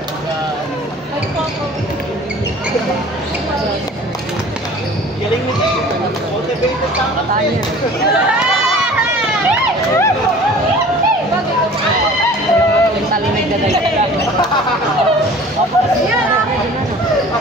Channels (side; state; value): both; normal; correlation 0.45